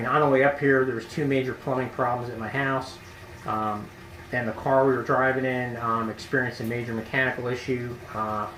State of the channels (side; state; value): both; identical; correlation 1.00